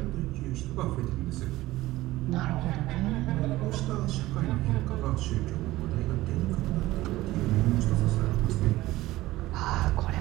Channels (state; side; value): quieter; left; 17.3 dB